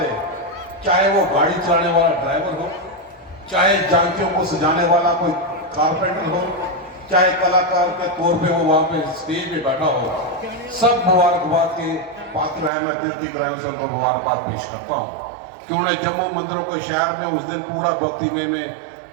चाहे वो गाड़ी चलाने वाला ड्राइवर हो, चाहे झांकियों को सजाने वाला कोई कारपेंटर हो, चाहे कलाकार के तौर पे वो वहाँ पे स्टेज पे बैठा हो, सब मुबारकबाद के पात्र हैं। मैं दिल की गहराइयों से उनको मुबारकबाद पेश करता हूँ कि उन्होंने जम्मू मंदिरों के शहर में उस दिन पूरा भक्तिमय में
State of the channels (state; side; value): drops out; left; at 12.7 s